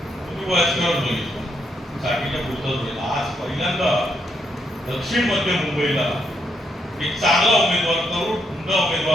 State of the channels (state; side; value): normal; both; correlation 0.77